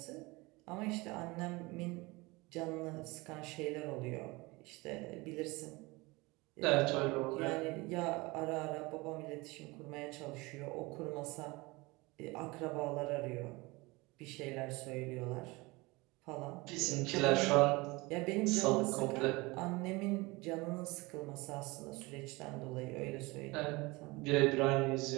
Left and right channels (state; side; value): quieter; left; 23.6 dB